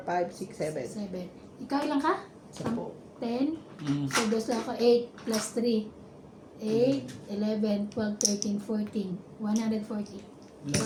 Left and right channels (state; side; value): identical; both; correlation 1.00